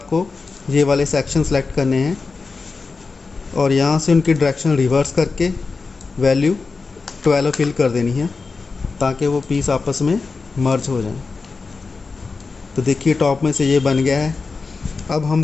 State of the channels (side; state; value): right; quieter; 4.3 dB